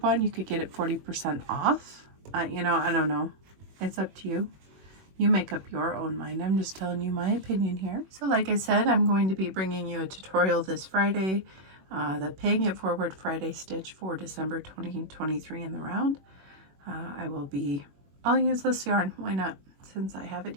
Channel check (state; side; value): late; left; 21 ms